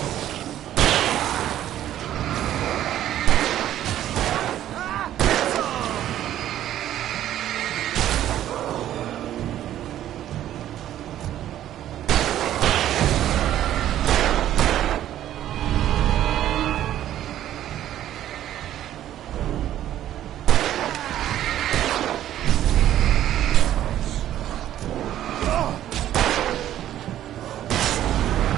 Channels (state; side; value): quieter; left; 12.1 dB